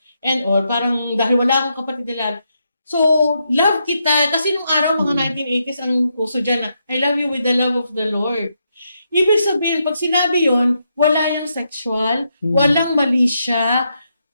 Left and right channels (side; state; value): both; inverted; correlation -0.81